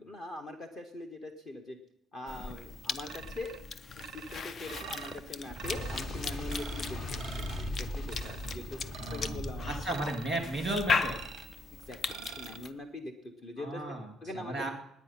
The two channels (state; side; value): normal; both; correlation 0.72